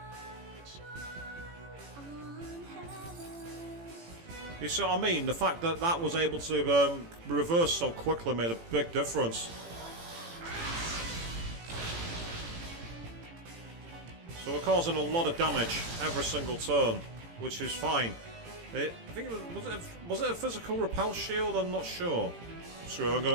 You see what I mean? The fact that that was able to reverse so quickly made a big difference. So we're causing a lot of damage every single turn, which is fine. I think it was it a physical repel shield? I'm not sure. So I'm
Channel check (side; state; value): left; late; 18 ms